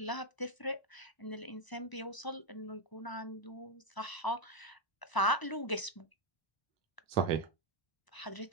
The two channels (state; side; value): late; right; 1.0 ms